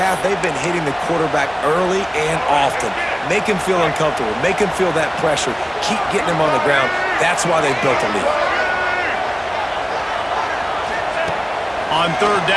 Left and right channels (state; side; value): identical; both; correlation 1.00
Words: they've been hitting the quarterback early and often. Make him feel uncomfortable. Make him feel that pressure. Keep getting him on the ground. That's why they built a lead. On third